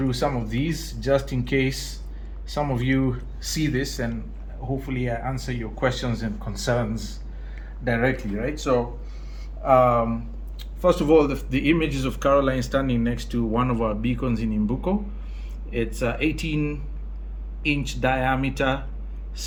some of these just in case some of you see this, and hopefully I answer your questions and concerns directly, right? So first of all, the images of Caroline standing next to one of our beacons in Mbuko. It's a 18-inch diameter,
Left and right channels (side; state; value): both; identical; correlation 1.00